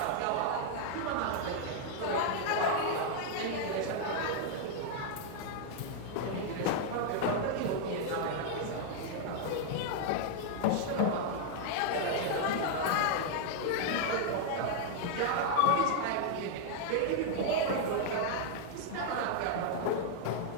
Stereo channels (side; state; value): both; different; correlation 0.00